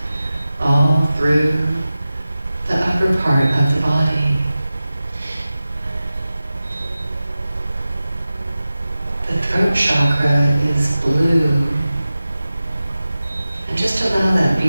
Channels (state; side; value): inverted; both; correlation -0.95